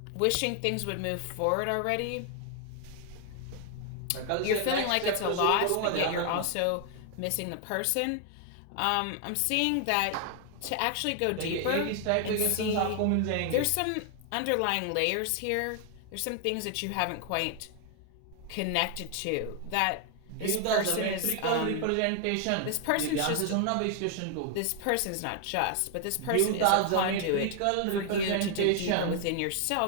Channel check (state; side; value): different; both; correlation 0.00